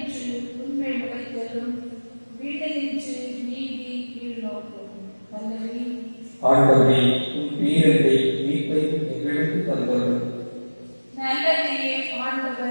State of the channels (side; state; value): both; inverted; correlation -1.00